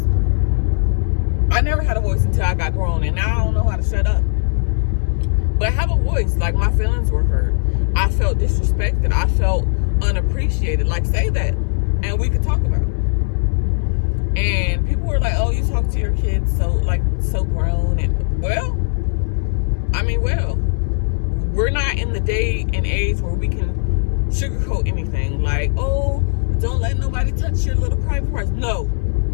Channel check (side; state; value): right; silent; digital silence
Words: I never had a voice until I got grown, and now I don't know how to shut up. But have a voice. Like, my feelings were hurt. I felt disrespected. I felt unappreciated. Like, say that, and we could talk about it. And people were like, oh, you talk to your kids so grown. And well, we're not in the day and age where we can sugarcoat anything. Like, oh, don't let nobody touch your little private parts. No.